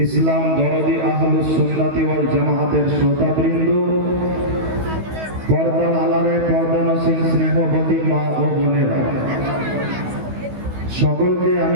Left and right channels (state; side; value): late; left; 16 ms